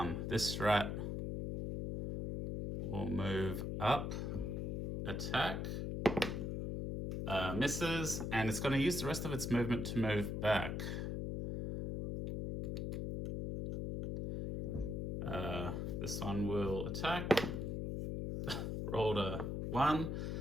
This rat will move up, attack, misses, and it's going to use the rest of its movement to move back. This one will attack. Rolled a 1.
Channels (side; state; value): left; noise; hum, 2 dB below the sound